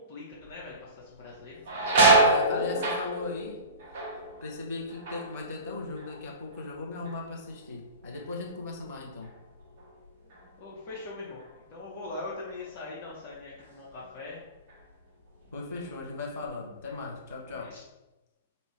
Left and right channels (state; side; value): inverted; both; correlation -0.33